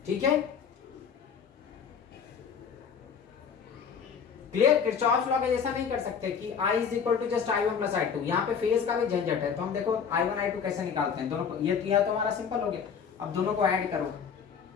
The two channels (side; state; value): right; quieter; 6.8 dB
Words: ठीक है, क्लियर। किरचॉफ्स लॉ के जैसा नहीं कर सकते कि I is equal to just I1 plus I2, यहाँ पे फेज का भी झंझट है, तो हम देखो I1 I2 कैसे निकालते हैं, दोनों को, ये तो हमारा सिंपल हो गया, अब दोनों को ऐड करो,